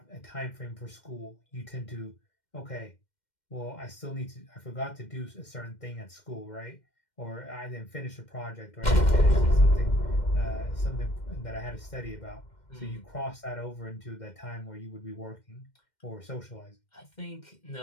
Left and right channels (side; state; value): right; late; 2.1 ms